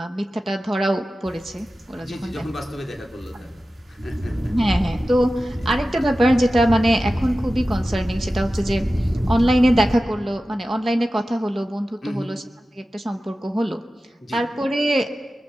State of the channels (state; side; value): normal; both; correlation 0.94